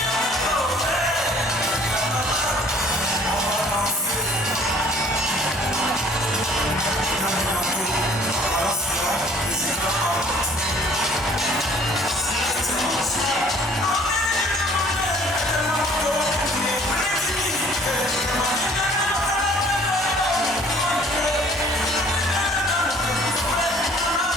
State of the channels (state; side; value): normal; both; correlation 0.55